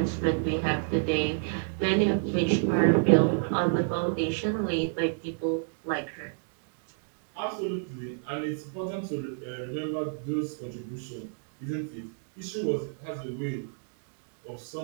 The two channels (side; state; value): left; silent; digital silence